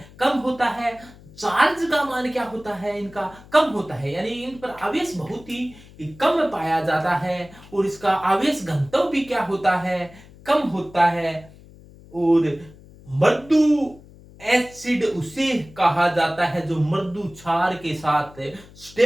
कम होता है। चार्ज का मान क्या होता है, इनका कम होता है, यानी इन पर आवेश बहुत ही कम पाया जाता है, और इसका आवेश घनत्व भी क्या होता है, कम होता है। और मृदु एसिड उसे कहा जाता है जो मृदु क्षार के साथ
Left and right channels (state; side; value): noise; left; hum, 22 dB below the sound